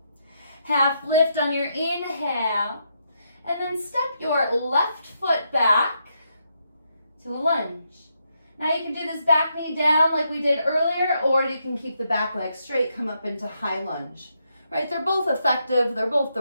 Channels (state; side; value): inverted; both; correlation -0.79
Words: Half lift on your inhale. And then step your left foot back to a lunge. Now you can do this back knee down like we did earlier, or you can keep the back leg straight, come up into high lunge. Right? They're both effective. They're both